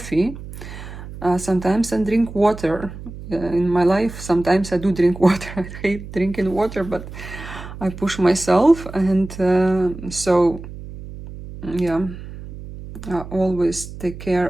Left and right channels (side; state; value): right; noise; hum, 12 dB below the sound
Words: Sometimes I drink water. In my life, sometimes I do drink water. I hate drinking water, but I push myself. And so, yeah, I always take